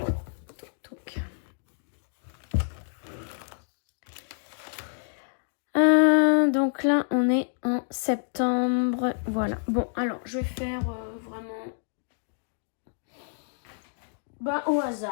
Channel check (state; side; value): silent; right; digital silence